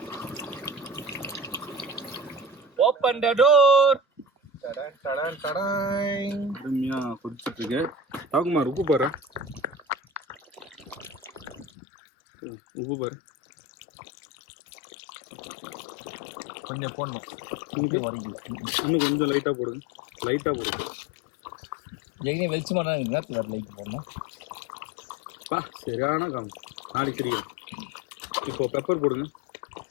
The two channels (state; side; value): drops out; right; at 11.7 s